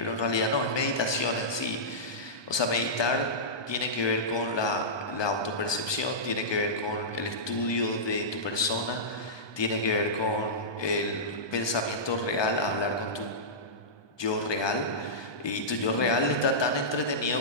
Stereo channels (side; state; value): right; late; 1.2 ms